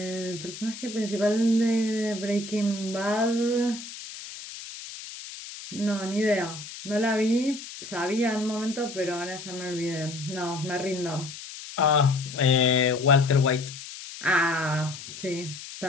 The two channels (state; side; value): noise; left; hiss, 12 dB below the sound